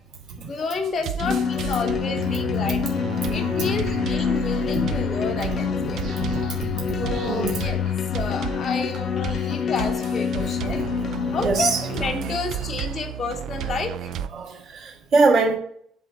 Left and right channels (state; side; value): normal; both; correlation 0.62